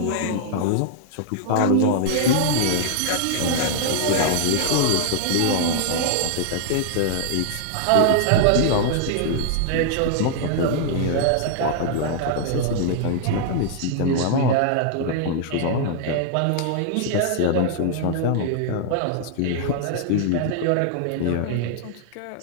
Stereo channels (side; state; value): both; different; correlation -0.01